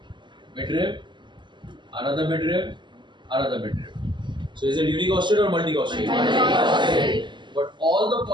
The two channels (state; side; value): late; left; 0.22 ms